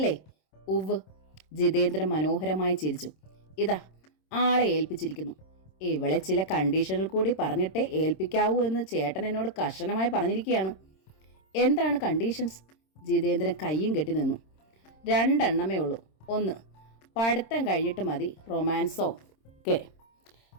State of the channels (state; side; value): late; right; 26 ms